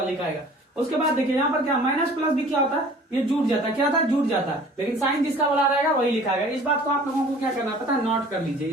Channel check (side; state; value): both; normal; correlation 0.48